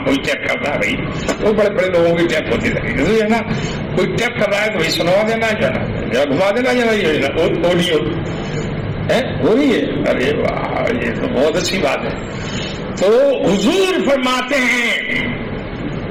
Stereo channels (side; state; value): both; identical; correlation 1.00